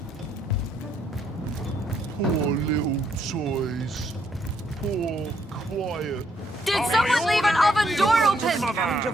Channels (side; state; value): both; normal; correlation 0.72